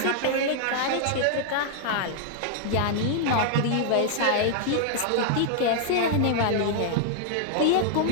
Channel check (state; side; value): different; both; correlation -0.01